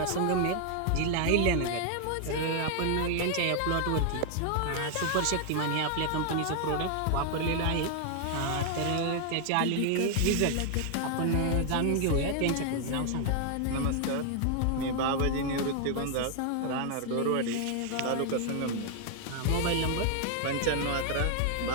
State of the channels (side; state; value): both; different; correlation 0.00